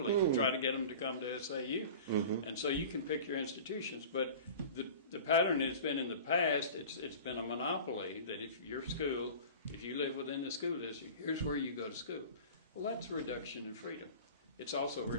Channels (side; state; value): both; inverted; correlation -0.37